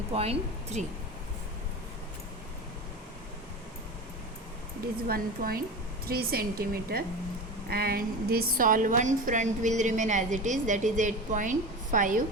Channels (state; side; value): normal; both; correlation 0.28